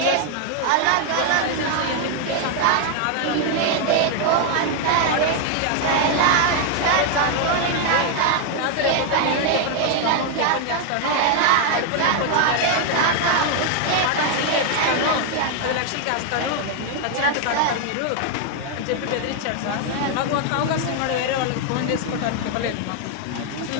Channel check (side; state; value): both; different; correlation 0.00